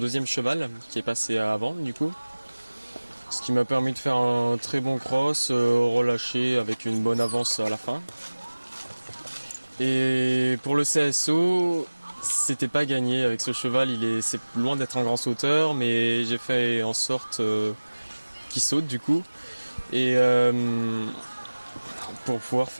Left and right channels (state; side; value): inverted; both; correlation -1.00